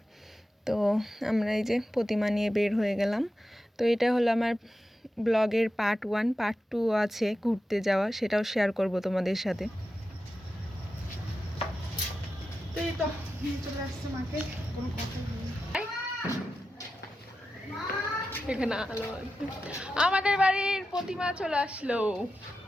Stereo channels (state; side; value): normal; both; correlation 0.91